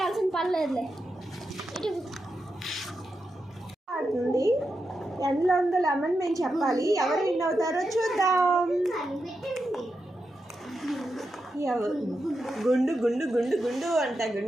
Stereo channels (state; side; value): normal; both; correlation 0.87